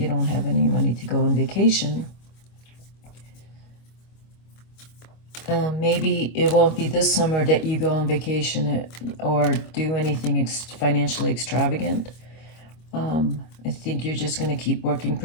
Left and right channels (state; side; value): late; right; 25 ms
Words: don't have any money to go on vacation, maybe it won't be this summer that you go on vacation or do anything financially extravagant. I think you're just going to keep working